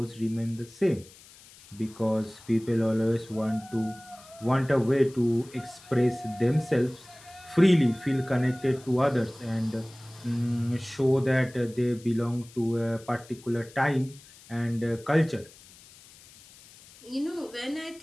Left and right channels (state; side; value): noise; left; hiss, 23 dB below the sound